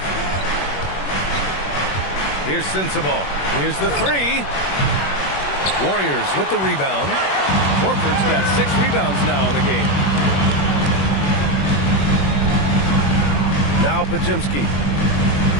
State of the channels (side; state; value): right; late; 21 ms